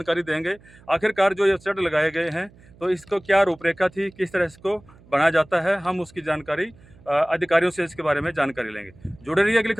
देंगे। आखिरकार जो ये स्टड लगाए गए हैं तो इसको क्या रूपरेखा थी, किस तरह इसको बनाया जाता है, हम उसकी जानकारी अधिकारियों से इसके बारे में जानकारी लेंगे। जुड़े रहिए अगली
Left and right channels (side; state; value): right; noise; hum, 26 dB below the sound